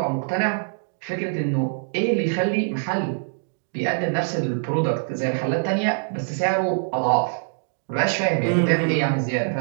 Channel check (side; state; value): left; silent; digital silence